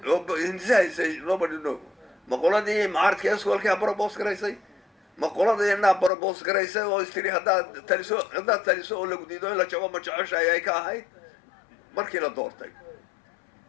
oo insaysay nobody know maqoladii mucaaradka iskoolka barabos gareysay maqoladii inaa barabos gareysay oo istiri haddaad taliso oo lagu diido in la jabo ma jeceshahay ay ka ahayd markii la doortay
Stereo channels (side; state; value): right; drops out; at 6.1 s